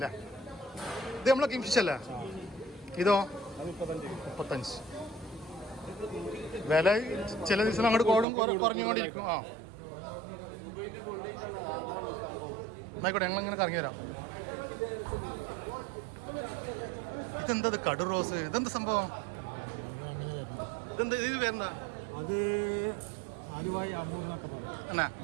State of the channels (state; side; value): drops out; left; at 8.2 s